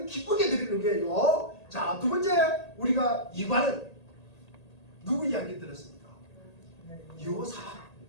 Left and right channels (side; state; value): right; late; 1.8 ms